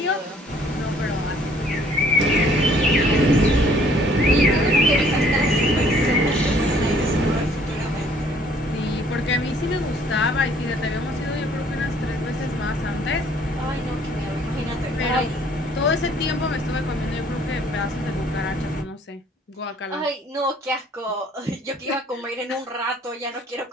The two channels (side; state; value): both; normal; correlation 0.59